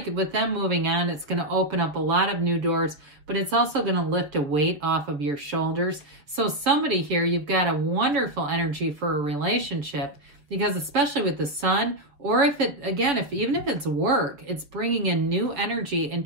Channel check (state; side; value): late; left; 6.8 ms